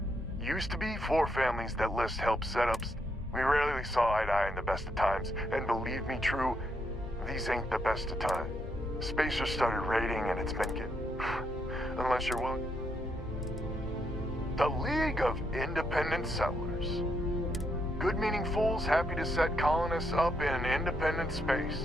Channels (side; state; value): both; normal; correlation 0.77